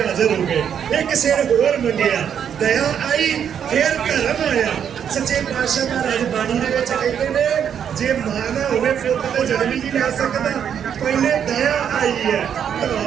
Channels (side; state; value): left; quieter; 8.4 dB